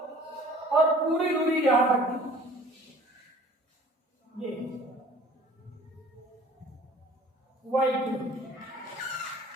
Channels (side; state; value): both; normal; correlation 0.50